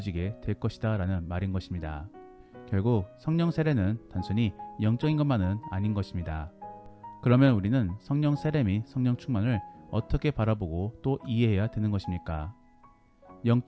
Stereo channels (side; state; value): both; identical; correlation 1.00